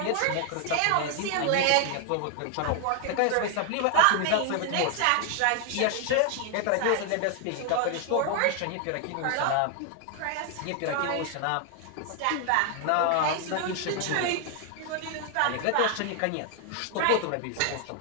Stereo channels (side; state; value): both; different; correlation 0.00